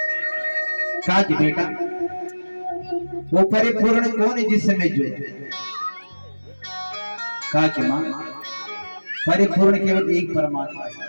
कहा कि बेटा वो परिपूर्ण कौन है जिससे मैं जुड़े? कहा कि मां परिपूर्ण केवल एक परमात्मा है।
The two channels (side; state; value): both; inverted; correlation -1.00